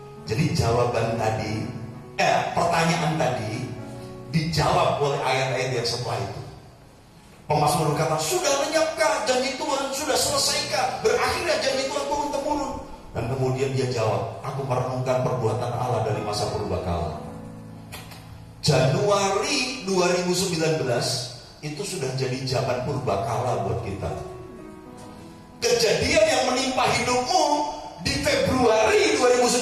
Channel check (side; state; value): both; identical; correlation 1.00